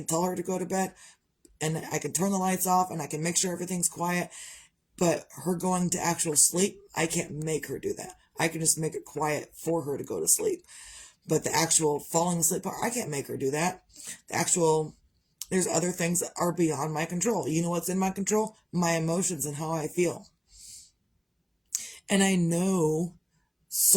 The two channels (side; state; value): both; identical; correlation 1.00